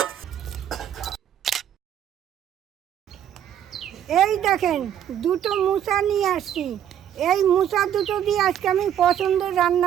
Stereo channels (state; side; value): quieter; left; 10.1 dB